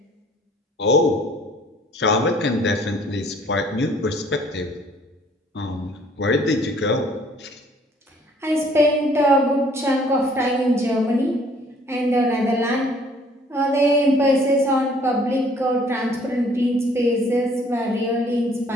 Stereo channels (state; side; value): normal; both; correlation 0.58